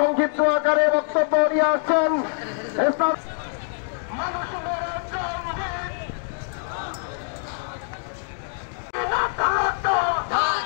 আকারে বক্তব্য নিয়ে আসছেন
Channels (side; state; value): right; silent; digital silence